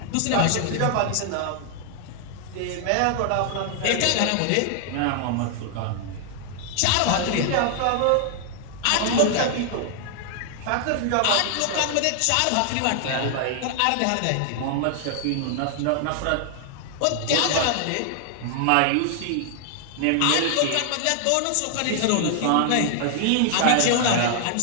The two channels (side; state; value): both; different; correlation 0.00